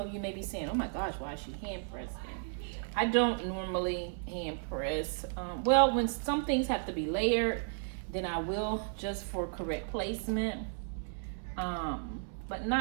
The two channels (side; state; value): left; silent; 55 dB below the other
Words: you may be saying, "Oh my gosh, why is she hand pressing?" I don't normally hand press. Well, when some things have to be layered, then I will, just for correct placement. But